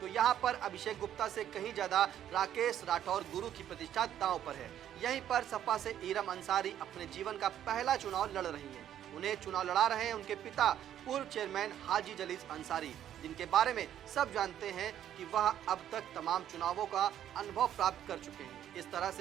यहाँ पर अभिषेक गुप्ता से कहीं ज्यादा राकेश राठौर गुरु की प्रतिष्ठा दांव पर है। यहीं पर सपा से इरम अंसारी अपने जीवन का पहला चुनाव लड़ रही हैं। उन्हें चुनाव लड़ा रहे हैं उनके पिता पूर्व चेयरमैन हाजी जलीस अंसारी, जिनके बारे में सब जानते हैं कि वह अब तक तमाम चुनावों का अनुभव प्राप्त कर चुके हैं। इस तरह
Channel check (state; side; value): quieter; left; 10.8 dB